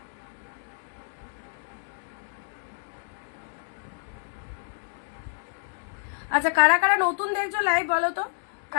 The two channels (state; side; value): silent; right; digital silence